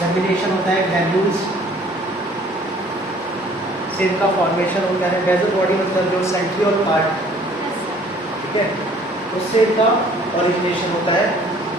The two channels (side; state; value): both; normal; correlation 0.55